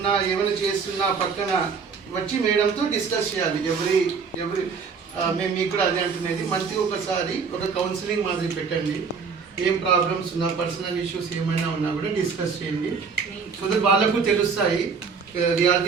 ఏమైనా చేస్తున్నా పక్కన వచ్చి మేడంతో డిస్కస్ చేయాలి. మేము మీకు కూడా అదే అంటున్నది. మంత్లీ ఒకసారి ఒక కౌన్సిలింగ్ మాదిరి పెట్టండి. ఏం ప్రాబ్లమ్స్ ఉన్నా, పర్సనల్ ఇష్యూస్ ఏమైనా ఉన్నా కూడా డిస్కస్ చేయండి. సో దట్ వాళ్ళకు తెలుస్తాయి.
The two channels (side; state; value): left; quieter; 5.5 dB